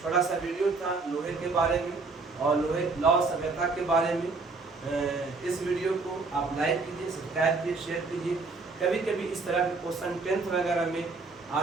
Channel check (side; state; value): left; quieter; 4.0 dB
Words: छोटा सा वीडियो था लोहे के बारे में और लोहे लौ सभ्यता के बारे में। इस वीडियो को आप लाइक कीजिए, सब्सक्राइब कीजिए, शेयर कीजिए। कभी कभी इस तरह के क्वेश्चन 10th वगैरह में